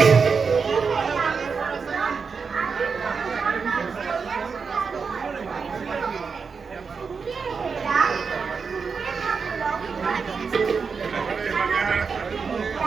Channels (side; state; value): left; quieter; 5.4 dB